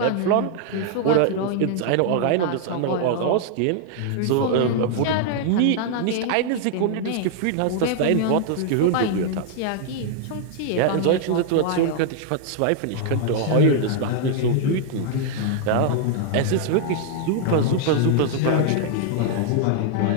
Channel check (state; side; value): different; both; correlation 0.00